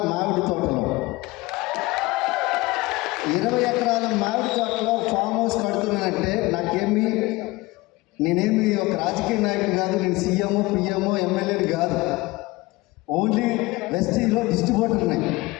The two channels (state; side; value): quieter; right; 21.4 dB